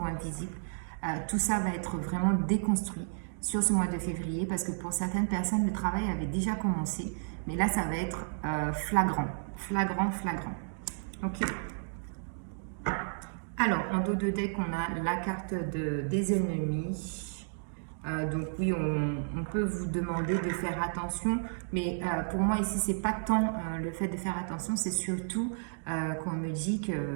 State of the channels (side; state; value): left; silent; digital silence